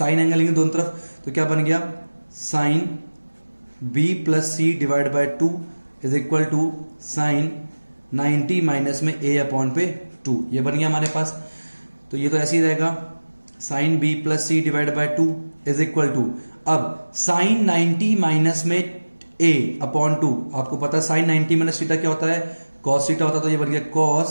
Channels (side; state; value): both; inverted; correlation -1.00